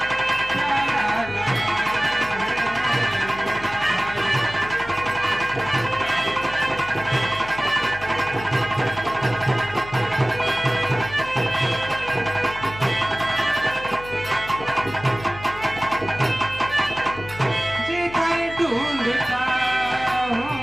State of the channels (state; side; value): noise; left; hum, 15 dB below the sound